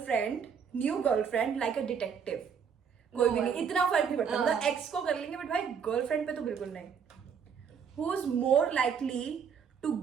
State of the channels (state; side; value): quieter; left; 6.9 dB